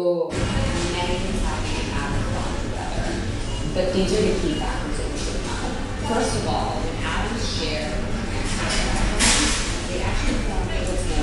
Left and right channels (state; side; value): identical; both; correlation 1.00